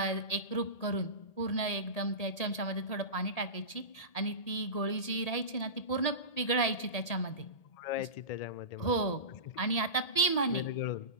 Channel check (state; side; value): late; right; 1.8 ms